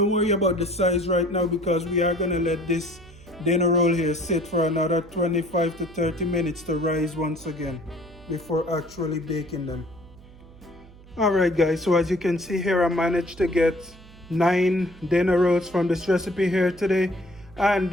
worry about the size right now, because we are going to let this dinner roll here sit for another 25 to 30 minutes to rise once again before actually baking them. Alright guys, so as you can see here, I managed to get 9 dinner rolls from this recipe here today,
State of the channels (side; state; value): right; noise; hum, 22 dB below the sound